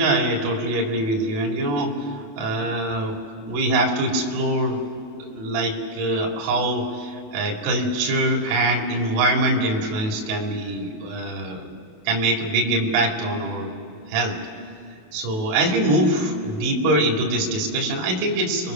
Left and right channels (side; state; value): left; late; 28 ms